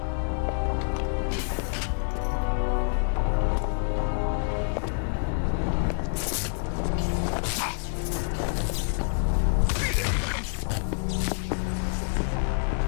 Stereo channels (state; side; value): silent; right; digital silence